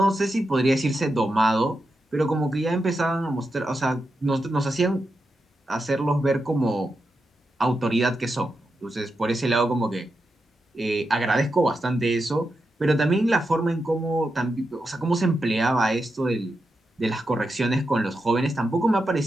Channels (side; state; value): both; normal; correlation 0.87